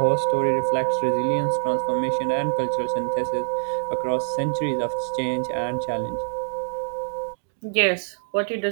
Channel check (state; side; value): silent; left; digital silence